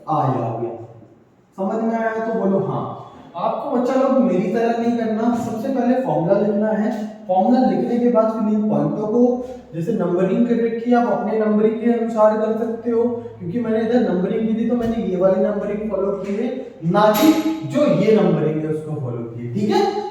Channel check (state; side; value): identical; both; correlation 1.00